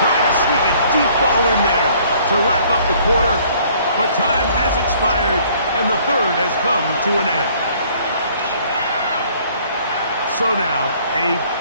try to sneak a deep ball in there to wrap up the quarter. But time has expired, and the 3rd has come to an end. So now, a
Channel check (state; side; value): inverted; both; correlation -0.59